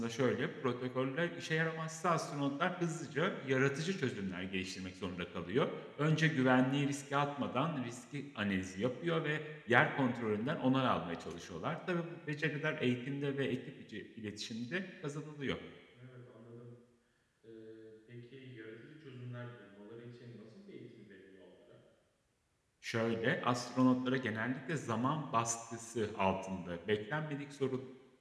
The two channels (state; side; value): identical; both; correlation 1.00